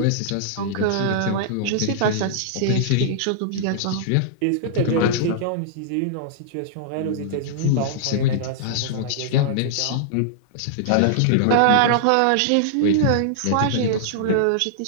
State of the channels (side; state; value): both; different; correlation -0.02